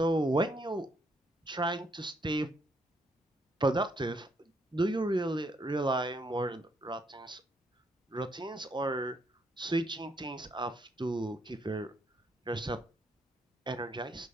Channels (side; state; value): both; normal; correlation 0.73